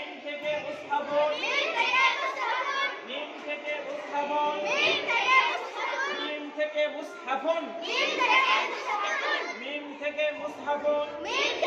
থেকে মুসহাফুন, মিম থেকে মুসহাফুন, মিম থেকে মুসহাফুন, মিম থেকে মুসহাফুন।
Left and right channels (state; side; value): identical; both; correlation 1.00